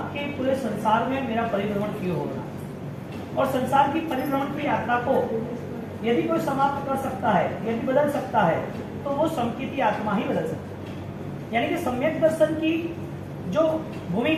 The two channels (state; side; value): identical; both; correlation 1.00